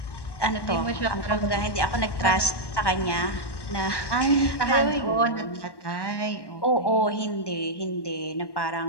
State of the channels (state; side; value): late; right; 1.1 ms